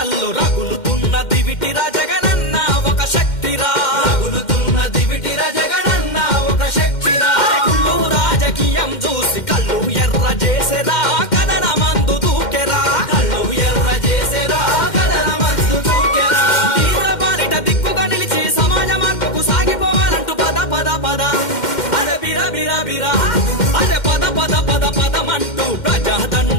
రగులుతున్న దివిటిరా జగనన్న ఒక శక్తిరా, రగులుతున్న దివిటిరా జగనన్న ఒక శక్తిరా. కుళ్ళు రాజకీయం చూసి కళ్ళు ఎర్ర చేసేరా కదన మందు దూకెరా, కళ్ళు ఎర్ర చేసేరా కదన మందు దూకెరా. తీవ్ర బారిట దిక్కుగా నిలిచి సమాజ మార్పుకు సాగిపోవాలంటూ పద పద పద అరే బిరా బిరా బిరా అరే పద పద పద పదమంటూ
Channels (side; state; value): right; late; 2.1 ms